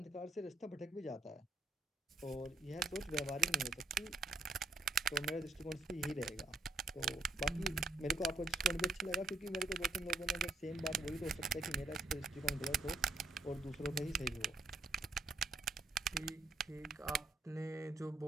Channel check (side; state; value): left; quieter; 3.6 dB